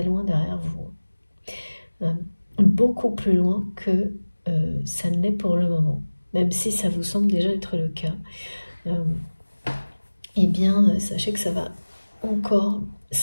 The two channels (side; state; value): both; inverted; correlation -1.00